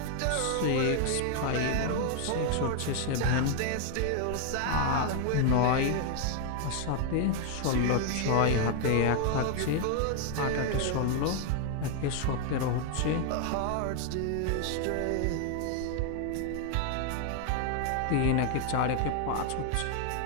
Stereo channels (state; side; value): different; both; correlation 0.00